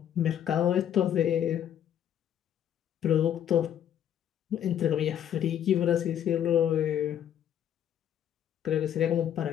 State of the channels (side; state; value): right; quieter; 10.1 dB